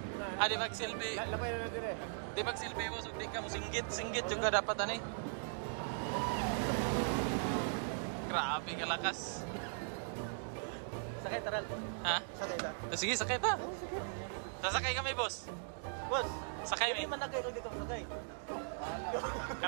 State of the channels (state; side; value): silent; left; digital silence